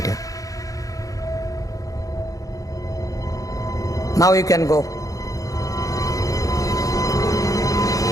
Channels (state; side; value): late; right; 0.17 ms